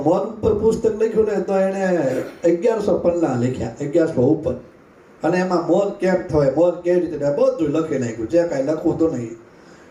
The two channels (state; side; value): identical; both; correlation 1.00